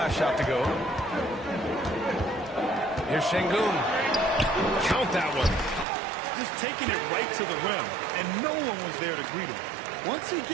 shot to go. Here's Şengün. Count that one. Just taking it right to the rim, and no one was there to greet him. Once he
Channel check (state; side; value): drops out; left; at 5.9 s